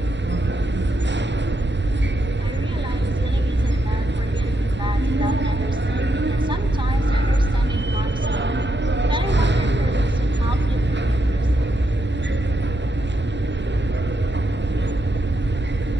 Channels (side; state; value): both; normal; correlation 0.81